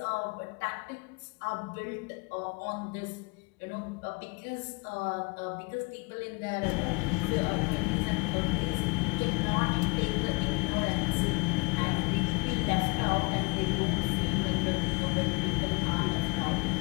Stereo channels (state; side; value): quieter; right; 29.9 dB